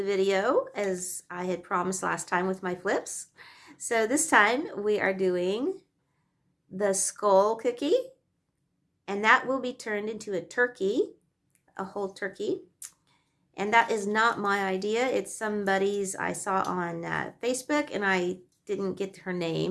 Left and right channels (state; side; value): identical; both; correlation 1.00